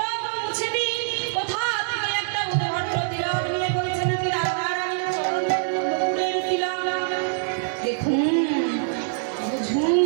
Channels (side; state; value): left; silent; 58 dB below the other